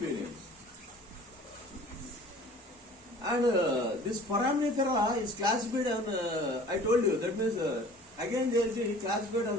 And this foraminifera is classified on, I told you, that means again they will be classified on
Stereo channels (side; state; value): both; normal; correlation 0.47